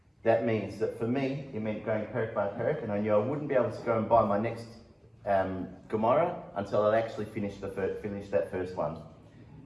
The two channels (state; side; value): identical; both; correlation 1.00